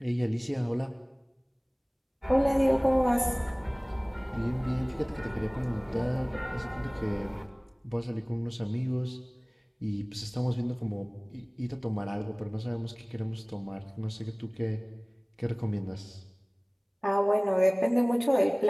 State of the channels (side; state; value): both; identical; correlation 1.00